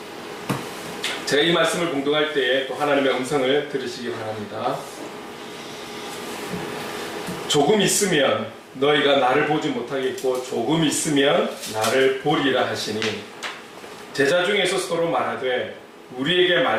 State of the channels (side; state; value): both; identical; correlation 1.00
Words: 제가 이 말씀을 공독할 때에 또 하나님의 음성을 들으시기 바랍니다. 조금 있으면 너희가 나를 보지 못하겠고 조금 있으면 나를 보리라 하시니, 제자 중에서 서로 말하되 우리에게